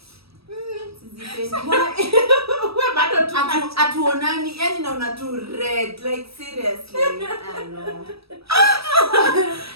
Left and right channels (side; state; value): left; late; 0.77 ms